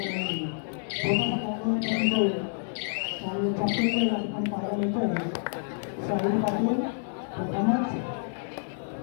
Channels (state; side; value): silent; right; 59 dB below the other